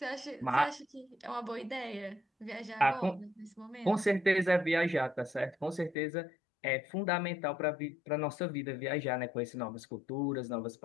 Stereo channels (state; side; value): drops out; right; at 6.0 s